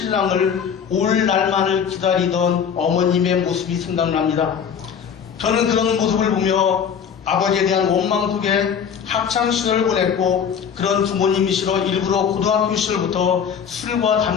올 날만을 기다리던 어머님의 모습이 생각납니다. 저는 그런 모습을 보며 아버지에 대한 원망 속에 학창시절을 보냈고 그런 부모님이시러 일부러 고등학교 시절부터 술과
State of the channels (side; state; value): right; quieter; 7.4 dB